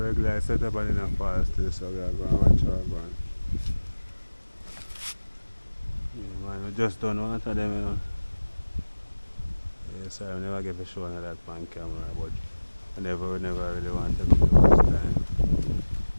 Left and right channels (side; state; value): both; inverted; correlation -1.00